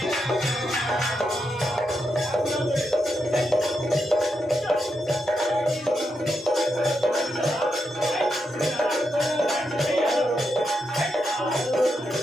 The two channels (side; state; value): both; normal; correlation 0.84